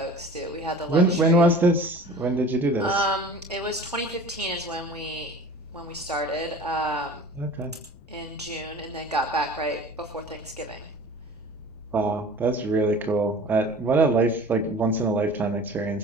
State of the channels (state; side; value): noise; left; rumble, 23 dB below the sound